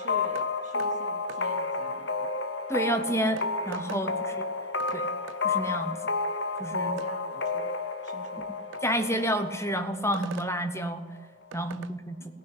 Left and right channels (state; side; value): normal; both; correlation -0.02